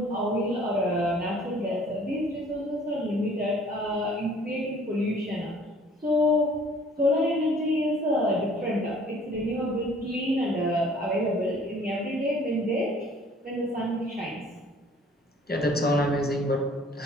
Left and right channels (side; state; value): both; normal; correlation 0.54